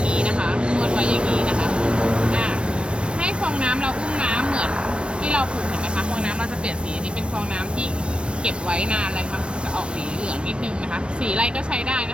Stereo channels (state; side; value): late; left; 0.058 ms